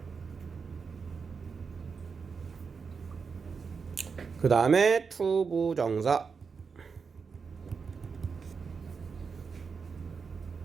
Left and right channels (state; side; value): quieter; left; 5.5 dB